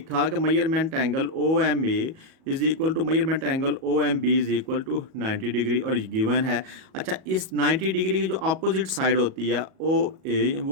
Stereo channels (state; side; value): late; left; 37 ms